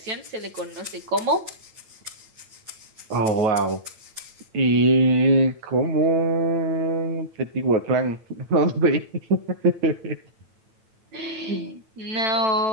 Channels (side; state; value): left; late; 9.1 ms